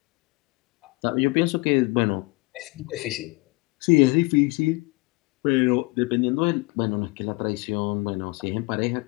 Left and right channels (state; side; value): quieter; right; 25.7 dB